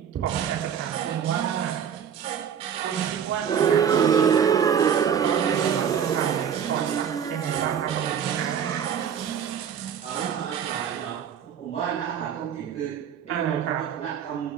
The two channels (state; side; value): quieter; left; 8.2 dB